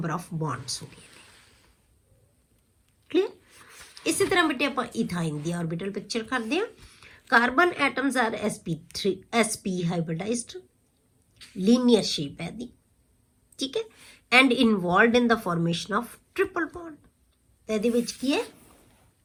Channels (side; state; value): both; identical; correlation 1.00